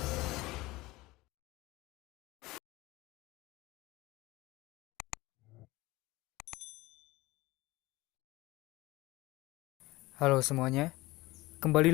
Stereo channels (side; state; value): right; quieter; 20.1 dB